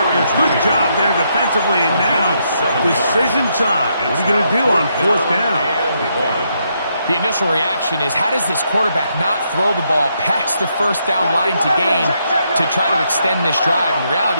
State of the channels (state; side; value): inverted; both; correlation -0.77